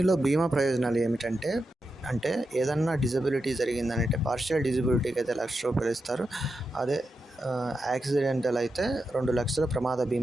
బీమా ప్రయోజనాలు ఏమిటంటే, ఏదన్నా డిజబిలిటీ జరిగిందంటే పార్షియల్ డిజబిలిటీకి అయితే ₹1,00,000 ఇస్తారు. అదే యాక్సిడెంటల్ అయితే 2,00,000 ప్రమాద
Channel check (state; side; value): normal; both; correlation 0.88